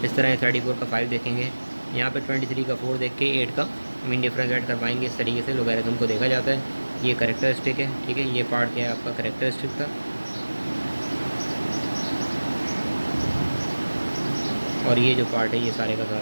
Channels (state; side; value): inverted; both; correlation -1.00